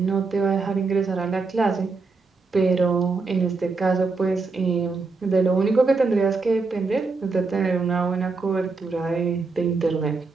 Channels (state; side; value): quieter; left; 4.1 dB